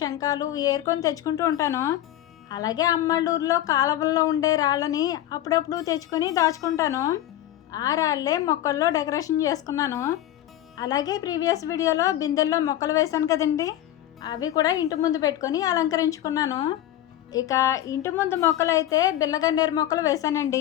ఏరుకొని తెచ్చుకుంటూ ఉంటాను. అలాగే అమ్మళ్ళూరులో కాలువల్లో ఉండే రాళ్ళని అప్పుడప్పుడు తెచ్చుకొని దాచుకుంటాను. ఆ రాళ్ళే మొక్కల్లో డెకరేషన్ చేసుకున్నాను. అలాగే ప్రీవియస్ వీడియోలో బిందెల్లో మొక్కలు వేశాను కదండి, అవి కూడా ఇంటి ముందు పెట్టుకొని అలంకరించుకున్నాను. ఇక ఇంటి ముందు మొక్కలు అయితే బిల్లగన్నేరు మొక్కలు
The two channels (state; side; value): quieter; right; 12.8 dB